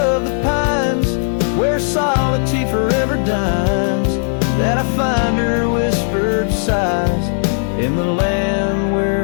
the pines, where solitude forever dines, that I find her whispered sighs, in the land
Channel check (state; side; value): silent; right; digital silence